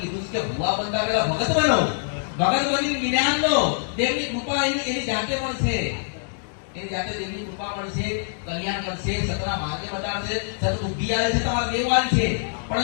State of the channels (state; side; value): silent; right; digital silence